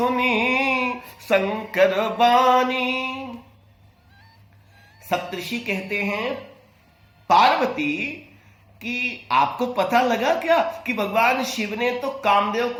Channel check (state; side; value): identical; both; correlation 1.00